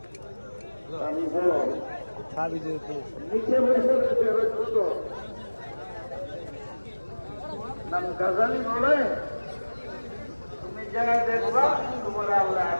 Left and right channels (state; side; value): inverted; both; correlation -1.00